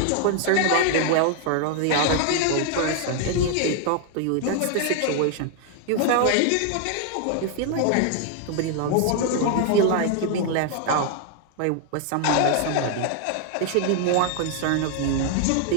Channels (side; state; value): both; different; correlation 0.00